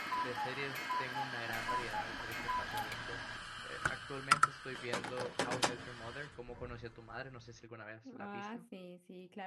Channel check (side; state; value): both; identical; correlation 1.00